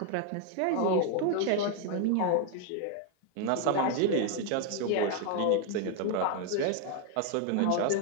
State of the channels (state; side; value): different; both; correlation 0.01